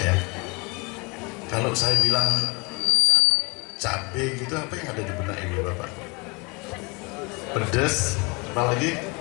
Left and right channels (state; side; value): quieter; right; 28.6 dB